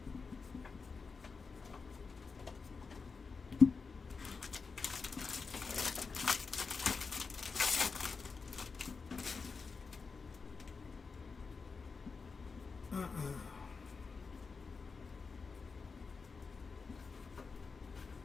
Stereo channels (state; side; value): quieter; right; 4.8 dB